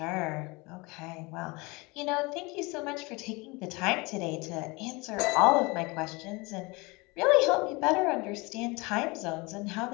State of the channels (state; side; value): quieter; right; 25.6 dB